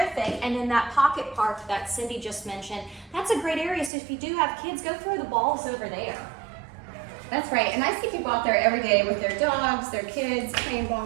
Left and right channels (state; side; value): drops out; left; at 3.9 s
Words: And in that pocket park that Cindy just mentioned, that's a great area. So if you do have kids, go throw the balls over there. That's right. And I see people out there every day with their dogs, their kids, playing